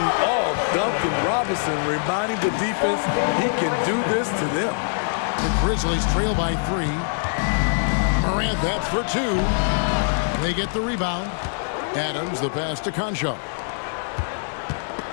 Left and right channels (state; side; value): silent; right; digital silence